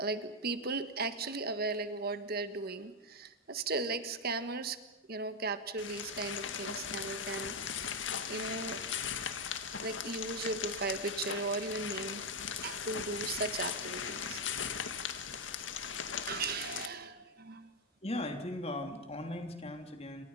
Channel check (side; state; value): both; normal; correlation 0.05